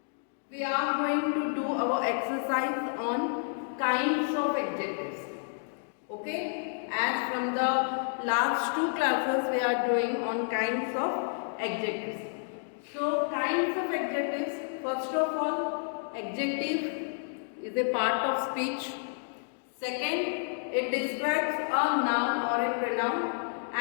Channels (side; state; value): right; silent; digital silence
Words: we are going to do our exercise on kinds of adjectives. Okay? As from the last two classes we are doing on kinds of adjectives. So kinds of adjectives, first of all, adjective is a part of speech. Second, it describes a noun or a pronoun,